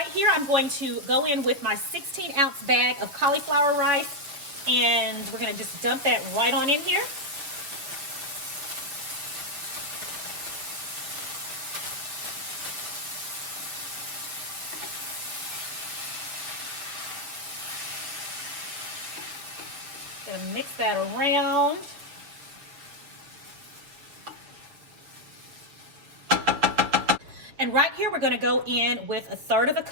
here I'm going to go in with my 16-ounce bag of cauliflower rice, and we're going to just dump that right on in here. Gonna mix that around. And right here, we're going to go in with 1/3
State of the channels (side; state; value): left; late; 6.9 ms